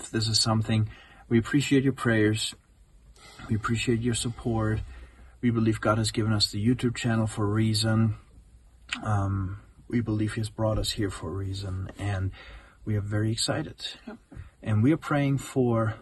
this is something. We appreciate your prayers. We appreciate your support. We believe God has given us the YouTube channel for a reason. We believe He has brought us here for a reason, and we are very excited. Yep. And we are praying for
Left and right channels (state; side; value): identical; both; correlation 1.00